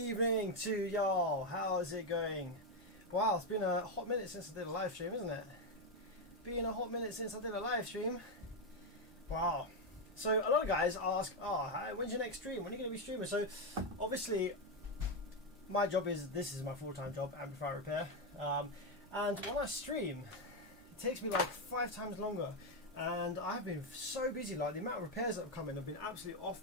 to y'all. How's it going? Wow, it's been a hot minute since I did a live stream, isn't it? Been a hot minute since I did a live stream. Wow. So a lot of guys ask, when's your next stream? When are you going to be streaming? So obviously my job is, this is my full-time job, amplifier repair. And when I stream, it takes me like 5 times longer. And I've been so busy, like the amount of repairs that have come in have been absolutely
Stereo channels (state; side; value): normal; both; correlation 0.06